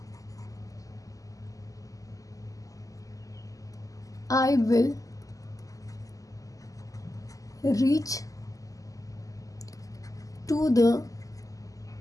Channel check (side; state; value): right; late; 0.17 ms